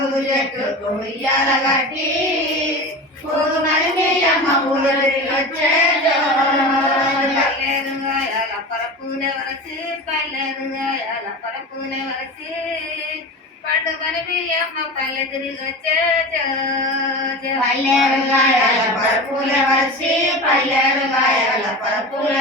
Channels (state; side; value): normal; both; correlation 0.30